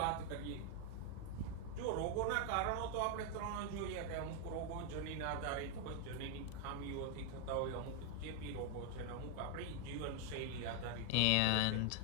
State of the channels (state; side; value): different; both; correlation 0.01